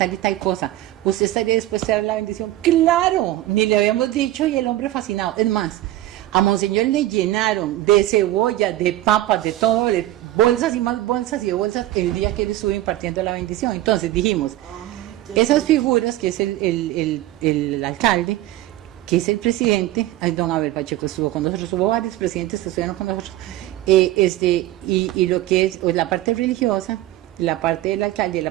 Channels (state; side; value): quieter; left; 15.2 dB